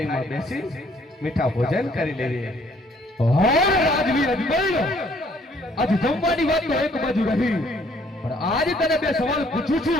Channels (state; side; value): normal; both; correlation 0.62